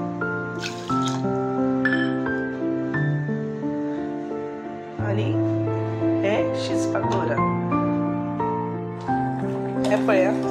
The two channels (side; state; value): both; identical; correlation 1.00